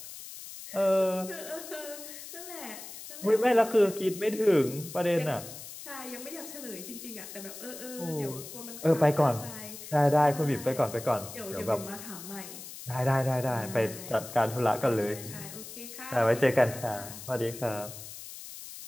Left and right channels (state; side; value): noise; left; hiss, 12 dB below the sound